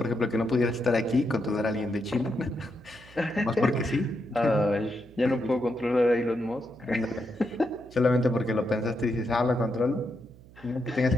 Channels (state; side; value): noise; right; hum, 22 dB below the sound